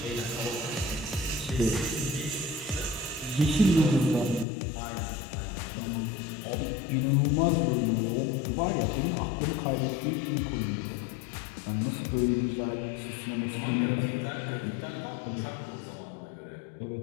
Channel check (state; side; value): drops out; right; at 4.5 s